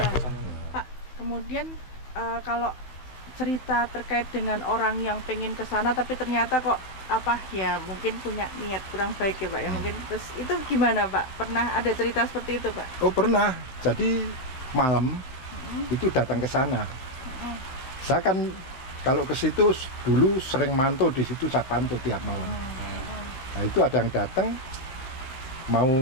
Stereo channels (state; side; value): late; right; 16 ms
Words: ke sana. Pak, kemudian kalau cerita terkait dengan orang yang pengen ke sana tapi ternyata kok mungkin punya niat kurang baik ya Pak ya, mungkin terus itu gimana Pak? Pernah ada cerita seperti itu Pak? Oh pernah. Jadi malam itu datang ke sana. Saya kan kalau ke situ dulu sering mantau di situ, saya pantau tiap malam. Nah itu ada yang datang mau